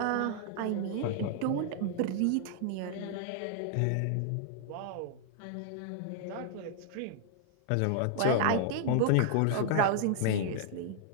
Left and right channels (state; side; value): different; both; correlation -0.01